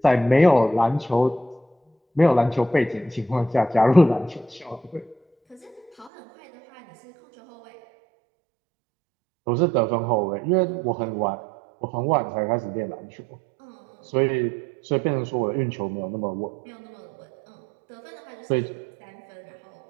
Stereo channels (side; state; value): left; drops out; at 6.1 s